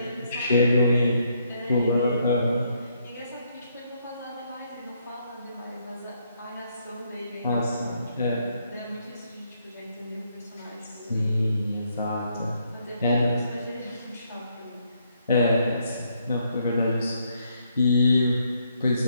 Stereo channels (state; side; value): inverted; both; correlation -0.73